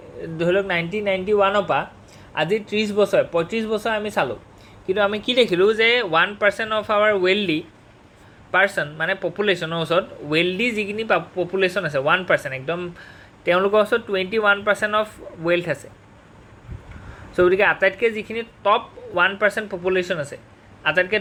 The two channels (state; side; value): identical; both; correlation 1.00